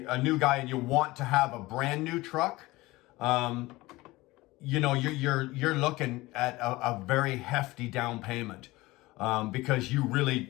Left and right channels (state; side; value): quieter; right; 20.1 dB